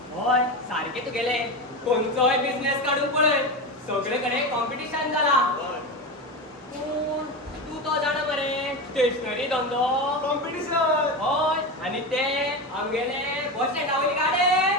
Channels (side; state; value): both; normal; correlation 0.20